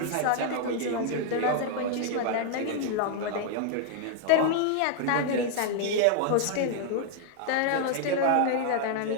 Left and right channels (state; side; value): different; both; correlation 0.00